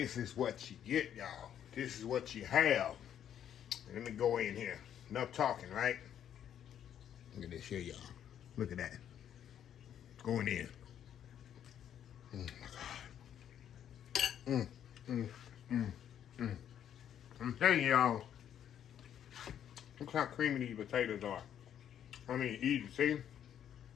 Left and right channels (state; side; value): quieter; right; 9.8 dB